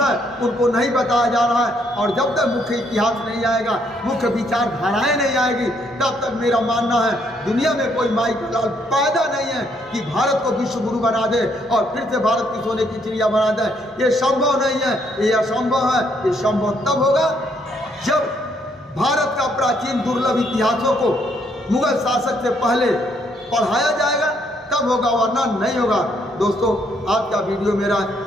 है उनको नहीं बताया जा रहा है। और जब तक मुख्य इतिहास नहीं आएगा, मुख्य विचारधाराएं नहीं आएगी, तब तक मेरा मानना है दुनिया में कोई माई का लाल पैदा नहीं है कि भारत को विश्व गुरु बना दे और फिर से भारत की सोने की चिड़िया बना दे। ये संभव नहीं है, ये असंभव है। ये संभव तब होगा जब भारत का प्राचीन दुर्लभ इतिहासों को मुगल शासक से पहले पढ़ाया जाएगा, तब होगा, वरना नहीं होगा। दोस्तों आज का वीडियो मेरा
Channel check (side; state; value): both; normal; correlation 0.71